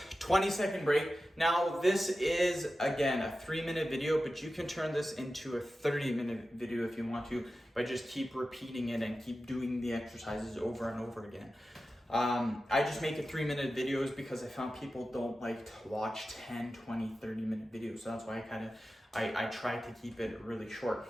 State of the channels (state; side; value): normal; both; correlation 0.93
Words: Twenty-second break. Now this is, again, a 3-minute video, but you can turn this into a 30-minute video if you want to by just keep repeating it and keep doing the exercises over and over again. I just make it 3-minute videos because I found people don't like to watch 10, 20, 30-minute videos. So that's why I try to keep it really short.